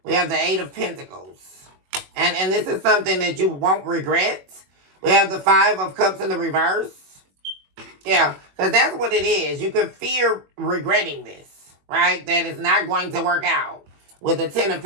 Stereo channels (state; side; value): late; left; 21 ms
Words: We have the Eight of Pentacles. And this is something that you won't regret. We have the Five of Cups in the reverse. Yeah, because that's what it is. You could fear regretting this, right? That it's not going to work out with the Ten of